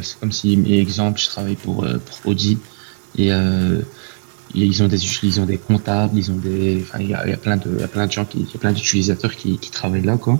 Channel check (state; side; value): silent; left; 58 dB below the other